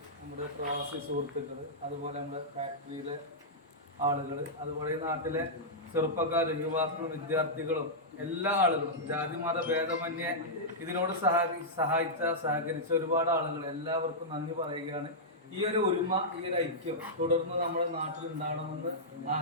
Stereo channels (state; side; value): normal; both; correlation -0.10